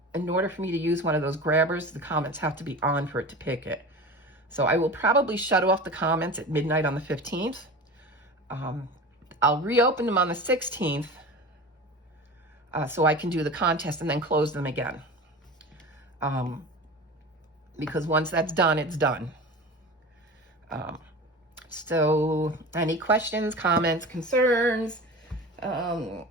in order for me to use one of those grabbers, the comments have to be on for it to pick it. So I will probably shut off the comments at midnight on the 15th. I'll reopen them on the 16th, so I can do the contest and then close them again. Because once that's done, it's done. So any questions, comments, concerns, want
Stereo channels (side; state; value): both; normal; correlation 0.33